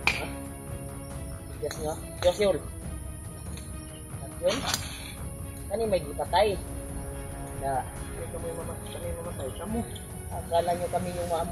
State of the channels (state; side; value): identical; both; correlation 1.00